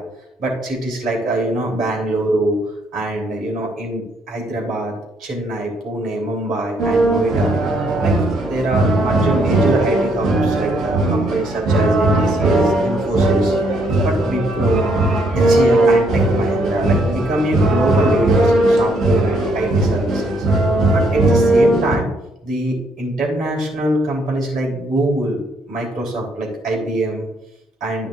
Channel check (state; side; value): normal; both; correlation 0.71